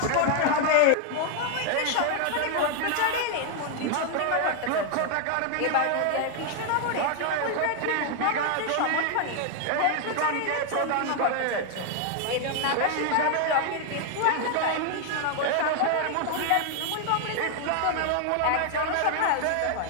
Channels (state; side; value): different; both; correlation 0.00